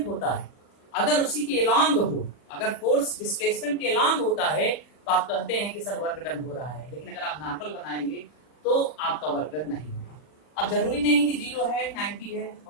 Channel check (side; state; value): right; late; 40 ms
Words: होता है अगर उसी के अलॉन्ग हो, अगर फोर्स डिस्प्लेसमेंट के अलॉन्ग होता है तो आप कहते हैं कि सर वर्क डन हो रहा है। लेकिन अगर आप नॉर्मल बनाएंगे तो आपका वर्क डन नहीं होगा। अब जरूरी नहीं कि 0 है 90 है,